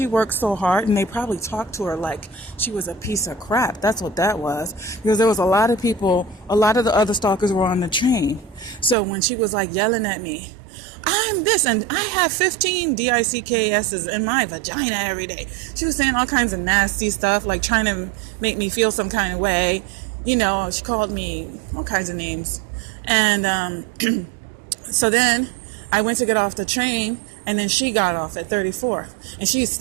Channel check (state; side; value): drops out; left; at 9.0 s